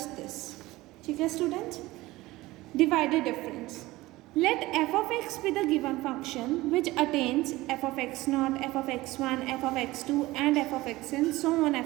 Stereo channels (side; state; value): left; quieter; 19.0 dB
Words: this. ठीक है students? Divided difference. Let f of x be the given function which attains f of x0, f of x1, f of x2 and f of xn, so on